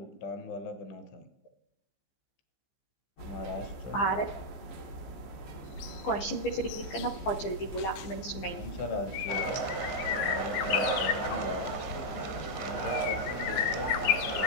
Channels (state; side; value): late; right; 15 ms